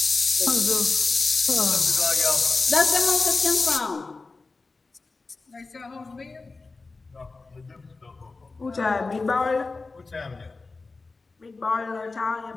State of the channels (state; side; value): quieter; right; 3.8 dB